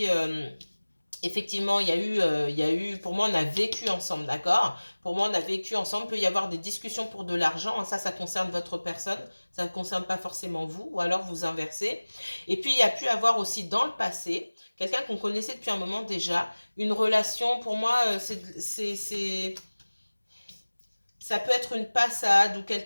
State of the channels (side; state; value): both; inverted; correlation -1.00